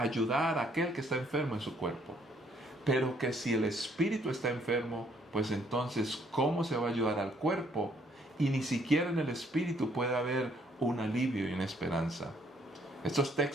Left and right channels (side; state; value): both; normal; correlation 0.66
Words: a aquel que está enfermo en su cuerpo. Pero que si el espíritu está enfermo, pues entonces ¿cómo se va a ayudar al cuerpo? Y ni siquiera en el espíritu puede haber un alivio y una esperanza. Estos